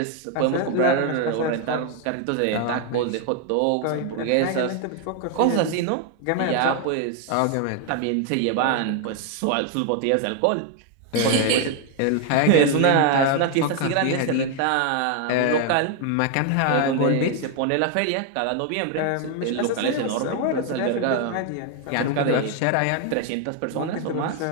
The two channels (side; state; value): both; different; correlation 0.01